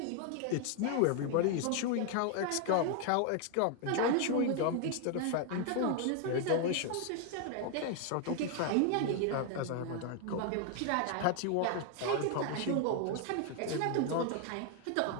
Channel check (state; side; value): different; both; correlation 0.00